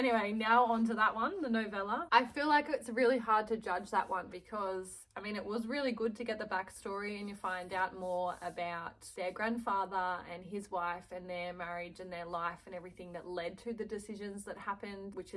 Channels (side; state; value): both; identical; correlation 1.00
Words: now on to that one, the novella. I feel like it's really hard to judge that one because, I mean, it was really good to get the backstory and you find out more about their grandfather and his wife and their marriage and their life and everything that led to the decisions that happened, which